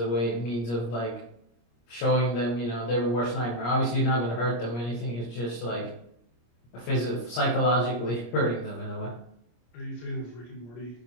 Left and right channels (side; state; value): right; late; 25 ms